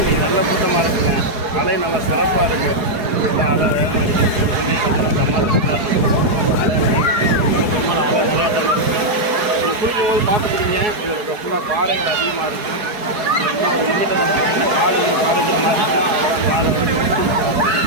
நல்ல கூட்டமாக இருக்குங்க. அலை நல்லா சிறப்பாக இருக்குது. அலை வேகமாக அடிக்குது. பார்த்தீங்கன்னா சமாதானமாக இருக்கும். அலை பெரும்பாலும் அலை நிறையா தான் இருக்குது. நீங்கள் குளிக்கும்போது பார்த்துக்கிறீங்க. இது ஃபுல்லாக பாறைகள் அதிகமாக இருக்கும். இன்னும் ஒரு லிமிட்டை பார்த்தீங்கன்னா காடு வந்து பாறைகள் மாதிரி இருக்கும். அதெல்லாம் காடு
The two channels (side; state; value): left; late; 4.7 ms